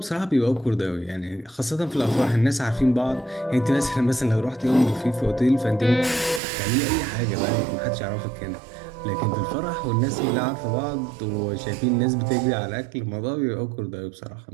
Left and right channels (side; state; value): left; drops out; at 6.4 s